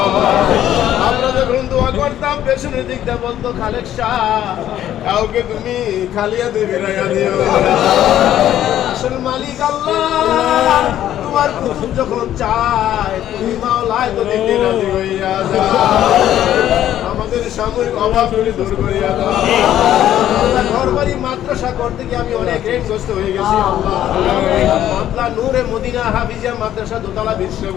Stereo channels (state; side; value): quieter; right; 11.8 dB